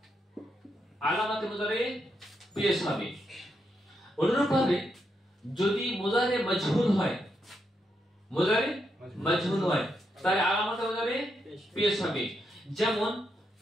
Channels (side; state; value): both; normal; correlation 0.81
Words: আলামাতে মুজারে পেশ হবে। অনুরূপভাবে যদি মুজারে মাজহুল হয়, মুজারে মাজহুল হয় তাহলে আলামাতে মুজারে পেশ হবে, যেমন